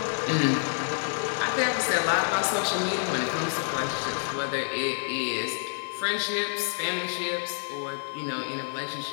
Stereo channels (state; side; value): silent; right; 55 dB below the other